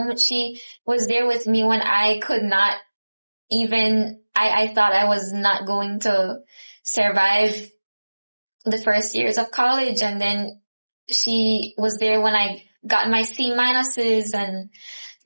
She was there with me when I could not even, I thought I was not going to survive the first years of college, and then she was there when I got my C minuses and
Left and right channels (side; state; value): both; inverted; correlation -1.00